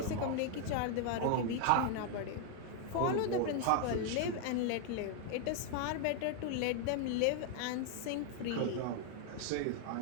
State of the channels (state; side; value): different; both; correlation 0.00